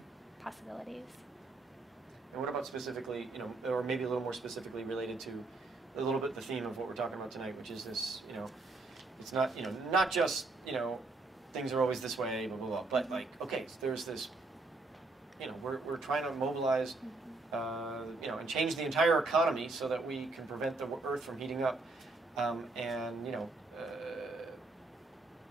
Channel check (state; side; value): quieter; left; 3.3 dB